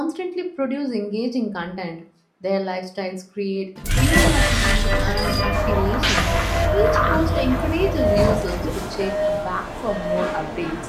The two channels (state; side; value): identical; both; correlation 1.00